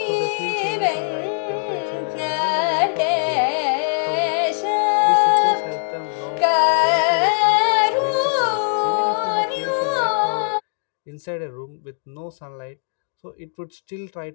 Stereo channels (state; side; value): silent; right; digital silence